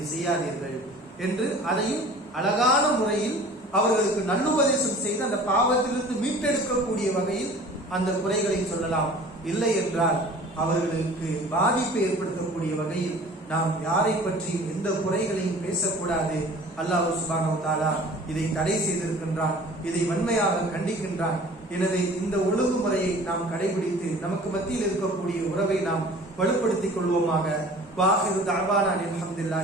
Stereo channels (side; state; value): both; normal; correlation 0.46